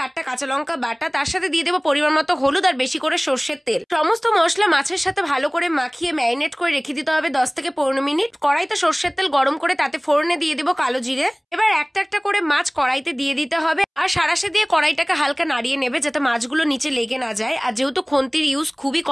8টা কাঁচা লঙ্কা বাটা। তার সাথে দিয়ে দেবো পরিমাণ মতো হলুদ আর বেশি করে সর্ষের তেল। সমস্ত মশলা মাছের সাথে ভালো করে মাখিয়ে ম্যারিনেট করে রেখে দিতে হবে 10 থেকে 15 মিনিট। কড়াইতে সর্ষের তেল গরম করে তাতে ফোড়নে দিয়ে দেবো কালো জিরে। এবার একটা একটা করে মাছ কড়াইতে দিয়ে দিতে হবে আর সারাশে দিয়ে কড়াইটাকে হালকা নাড়িয়ে নেবে যাতে মাছগুলো নিচে লেগে না যায়। আর যেহেতু খুন্তির ইউজ খুবই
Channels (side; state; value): both; identical; correlation 1.00